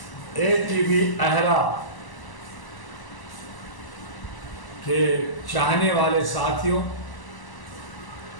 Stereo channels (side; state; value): right; late; 1.0 ms